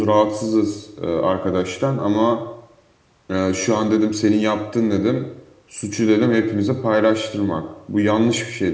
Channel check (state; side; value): identical; both; correlation 1.00